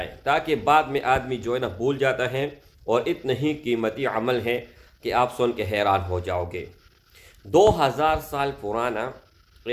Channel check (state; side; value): identical; both; correlation 1.00